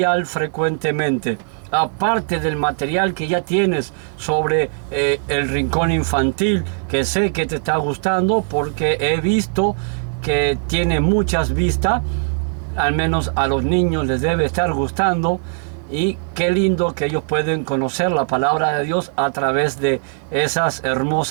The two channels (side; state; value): left; silent; 66 dB below the other